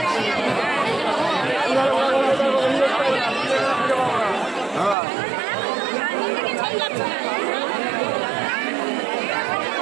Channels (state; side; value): drops out; left; at 5.0 s